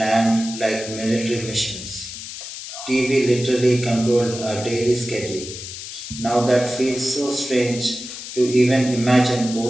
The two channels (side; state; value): left; noise; hiss, 10 dB below the sound